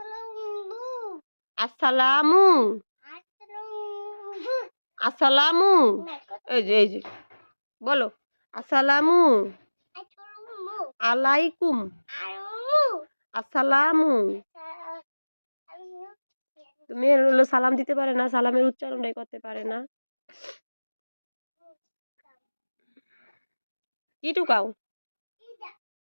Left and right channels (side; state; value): both; inverted; correlation -1.00